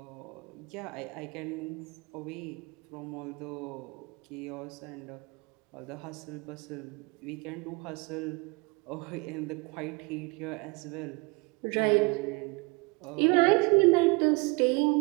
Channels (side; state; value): left; quieter; 28.4 dB